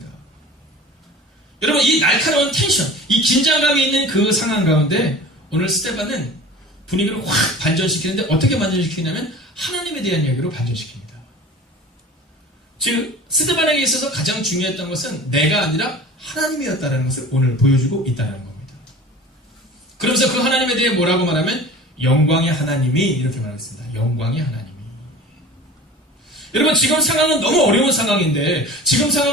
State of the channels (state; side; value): normal; both; correlation 0.39